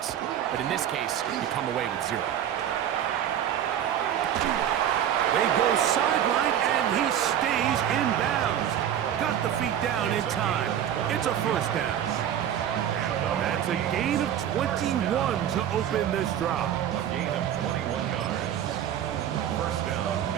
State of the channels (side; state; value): left; quieter; 10.2 dB